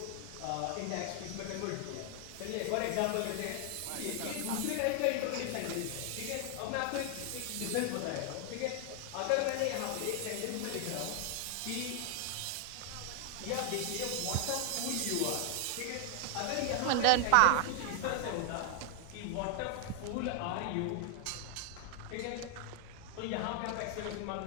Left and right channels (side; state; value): both; different; correlation 0.00